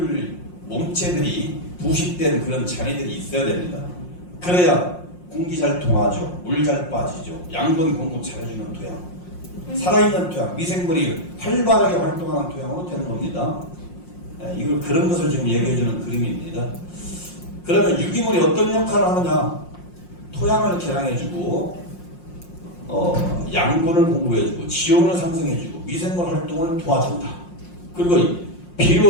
몸체들이 부식된 그런 잔해들이 있어야 됩니다. 그래야 공기 잘 통하죠. 물 잘 빠지죠. 양분 공급 잘해주는 토양. 살아있는 토양, 미생물이 활발하게 활동하는 토양으로 되는 겁니다. 이걸 그런 것을 지금 얘기해주는 그림입니다. 그러면 유기물이 어떤 역할을 하느냐? 토양을 개량해주고, 양분을 공급해주고, 지온을 상승해주고, 미생물 활동을 도와준다. 그리고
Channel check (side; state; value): right; late; 5.6 ms